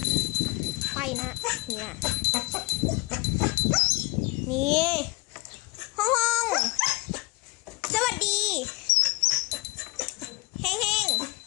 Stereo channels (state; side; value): quieter; right; 25.6 dB